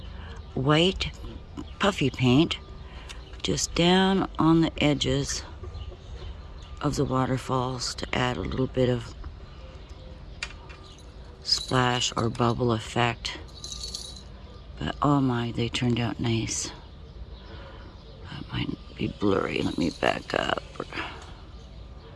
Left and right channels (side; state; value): both; identical; correlation 1.00